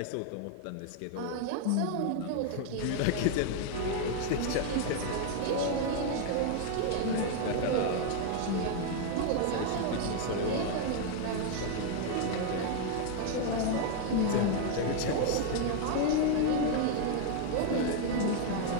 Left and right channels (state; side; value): different; both; correlation 0.00